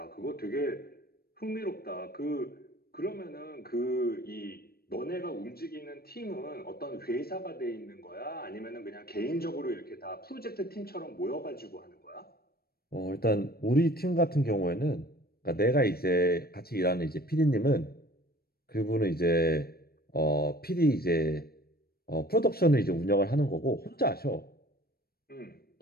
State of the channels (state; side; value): late; right; 0.45 ms